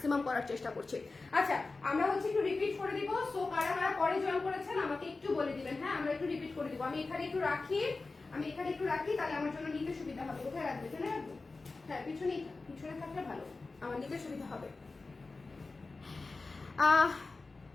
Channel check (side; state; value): right; quieter; 3.7 dB